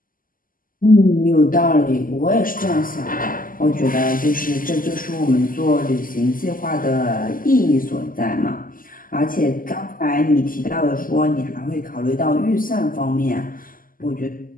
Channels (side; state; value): right; late; 0.41 ms